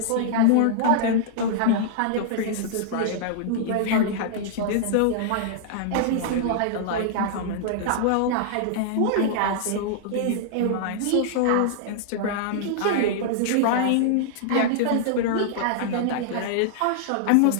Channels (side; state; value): both; different; correlation -0.01